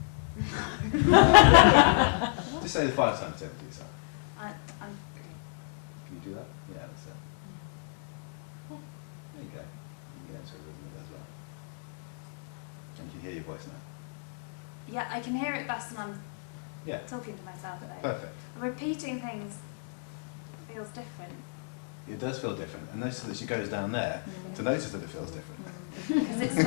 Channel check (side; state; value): right; silent; 56 dB below the other